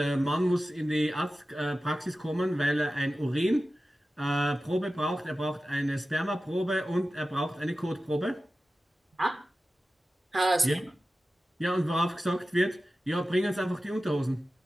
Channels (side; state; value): both; normal; correlation 0.94